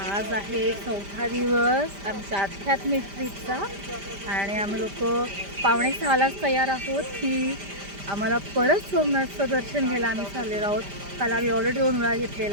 आहे 4था दिवस आमच्या आध्यात्मिक ट्रिपचा आणि आम्ही लोक 5:45लाच तयार आहोत की आम्हाला परत सोमनाथचं दर्शन घ्यायला आम्ही चाललेलो आहोत. काल आम्ही ऑलरेडी 2 वेळा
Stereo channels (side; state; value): left; late; 5.1 ms